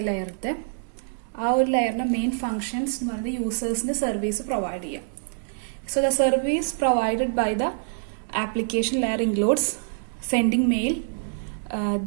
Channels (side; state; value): left; silent; digital silence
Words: ലെയറിന്റെ ആ ഒരു ലെയറിന്റെ മെയിൻ ഫങ്ഷൻസ് എന്ന് പറയുന്നത് യൂസേഴ്സിന് സർവീസ് പ്രൊവൈഡ് ചെയ്യാം. So the service provided by the application layer includes sending mail,